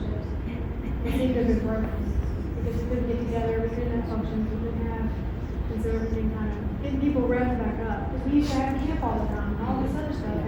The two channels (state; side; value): identical; both; correlation 1.00